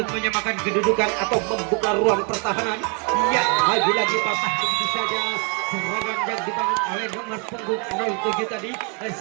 menyamakan kedudukan atau membuka ruang pertahanan. Ya, lagi-lagi patah begitu saja serangan yang dibangun oleh nomor punggung 07 tadi.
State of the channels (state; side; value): quieter; left; 34.2 dB